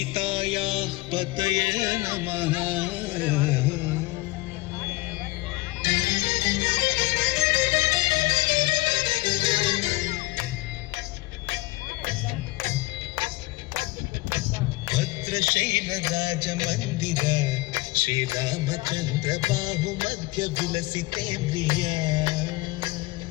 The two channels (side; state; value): right; quieter; 21.2 dB